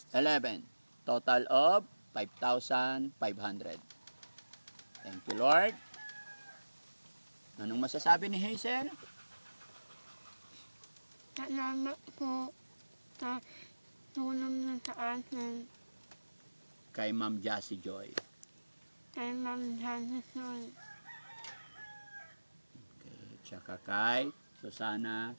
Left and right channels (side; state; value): both; inverted; correlation -1.00